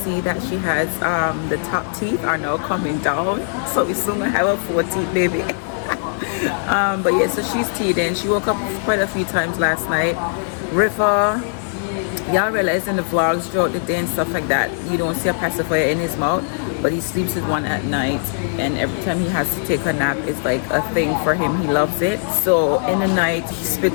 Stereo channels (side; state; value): right; silent; 66 dB below the other